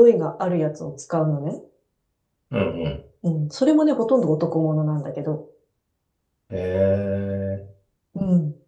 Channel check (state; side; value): identical; both; correlation 1.00